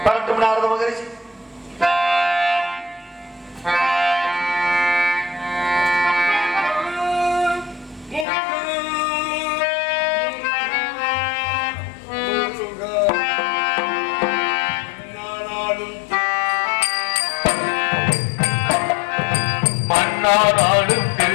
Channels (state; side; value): drops out; right; at 8.2 s